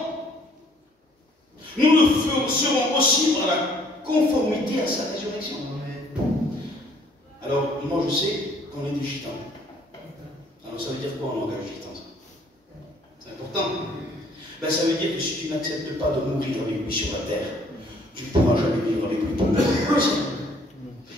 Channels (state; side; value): normal; both; correlation 0.61